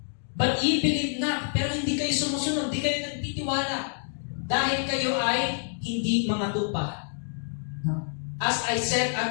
But ye believe not, pero hindi kayo sumusunod, hindi kayo nagtitiwala. Dahil kayo ay hindi mga tupa. As I said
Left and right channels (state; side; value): silent; right; 60 dB below the other